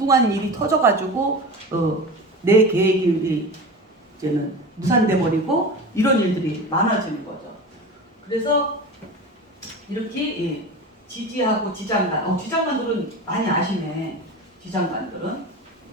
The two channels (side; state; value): both; normal; correlation 0.30